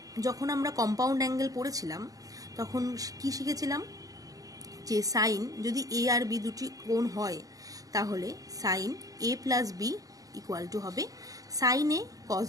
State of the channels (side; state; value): left; late; 0.17 ms